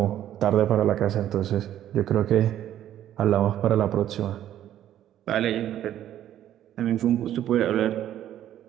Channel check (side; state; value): left; quieter; 11.7 dB